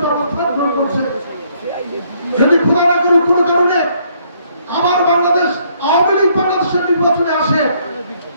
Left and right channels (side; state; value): both; inverted; correlation -0.67